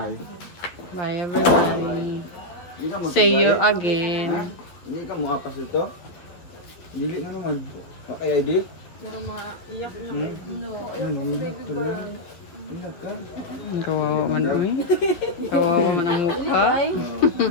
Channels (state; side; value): late; right; 11 ms